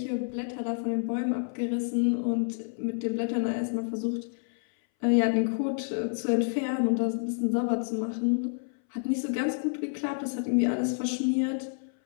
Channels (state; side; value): silent; right; 59 dB below the other